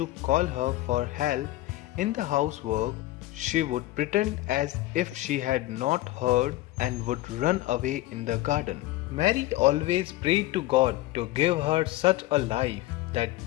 call her for help in the housework, she would pretend as if she had not heard and would run away in the garden. Mary always prayed to God to give her such a life that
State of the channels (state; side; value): quieter; right; 17.1 dB